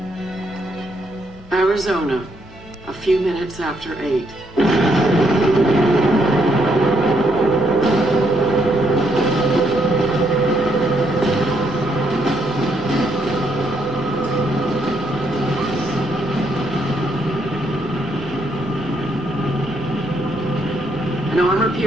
Arizona, a few minutes after 8. An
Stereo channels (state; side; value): normal; both; correlation 0.74